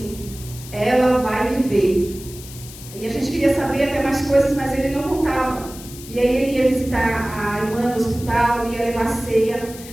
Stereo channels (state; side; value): noise; left; hiss, 16 dB below the sound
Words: ela vai viver. E a gente queria saber até mais coisas, mas ele não contava. E aí ele ia visitar a irmã no hospital, ia levar ceia.